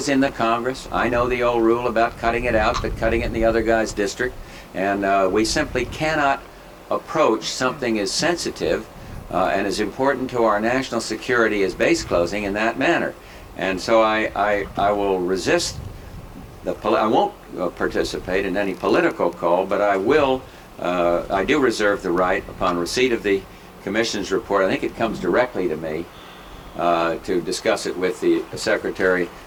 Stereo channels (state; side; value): identical; both; correlation 1.00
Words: in the Congress. I know the old rule about cutting it out, but cutting it in the other guy's district. And we simply cannot approach something as sensitive and as important to our national security as base closing in that manner. And so I will resist I won't participate in any political call, but I will, I do reserve the right upon receipt of the Commission's report, I think it comes directly to me, to discuss it with the Secretary